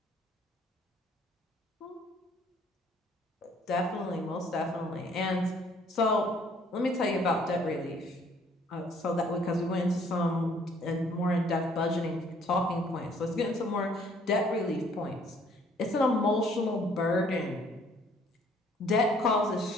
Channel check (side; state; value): both; normal; correlation 0.61